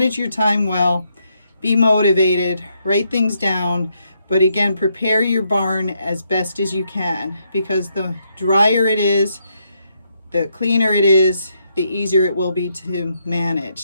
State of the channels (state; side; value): inverted; both; correlation -0.77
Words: your time well, be motivated, write things down, but again, prepare your barn as best as you can, because the drier it is, the cleaner it is, the easier it will be to